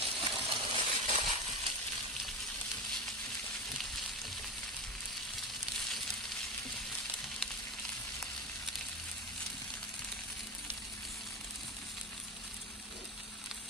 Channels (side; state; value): both; normal; correlation 0.18